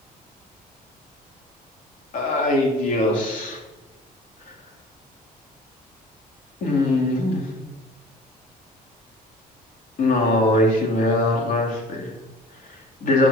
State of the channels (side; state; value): both; normal; correlation 0.45